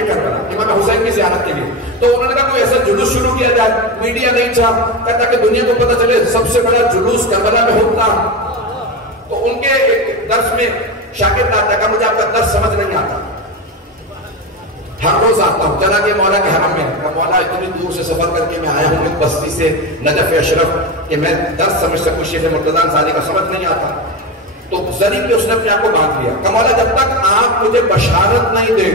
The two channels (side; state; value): both; normal; correlation 0.20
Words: کربلا امام حسین کی زیارت کے لیے. تو انہوں نے کہا کوئی ایسا جلوس شروع کیا جائے. میڈیا نہیں تھا، کہتا کہ دنیا کو پتہ چلے سب سے بڑا جلوس کربلا میں ہوتا. تو ان کے ایک درس میں شاگرد آتا کہ مجھے آپ کا درس سمجھ نہیں آتا، ہر روز آتا ہوں. چلا کہ مولا کے حرم میں، کہ مولا اتنی دور سے سفر کر کے میں آیا ہوں ایک بستی سے نجف اشرف کہ میں درس سمجھ سکوں. شیخ مرتضی انصاری کا سمجھ نہیں آتا. تو ذریعے پہ اس نے اپنے آپ کو باندھ لیا کہ مولا جب تک آپ مجھے بشارت نہیں